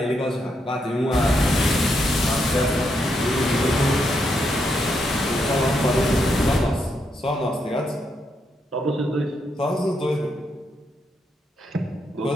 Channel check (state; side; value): normal; both; correlation 0.80